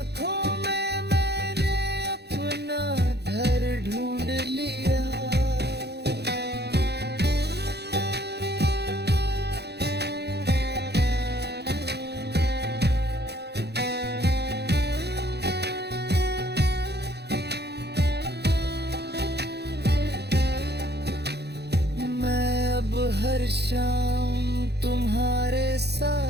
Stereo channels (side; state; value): left; late; 0.48 ms